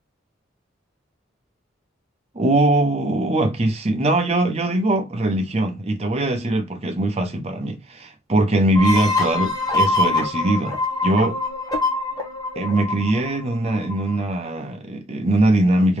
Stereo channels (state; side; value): normal; both; correlation 0.61